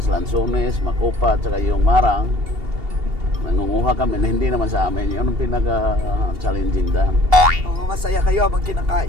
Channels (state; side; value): late; left; 2.8 ms